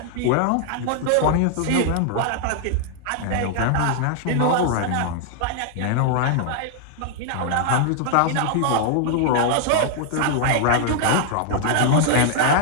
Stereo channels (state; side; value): different; both; correlation -0.01